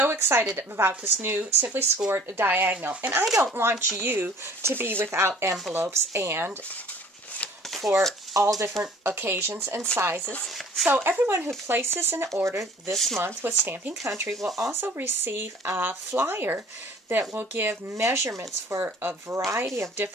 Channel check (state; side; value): normal; both; correlation 0.51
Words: excited about this new Simply Scored Diagonal, and I don't want you to be without envelopes and for all different occasions and sizes. So everyone who places an order this month with Stampin' Country will also receive a flyer that will give measurements for a variety of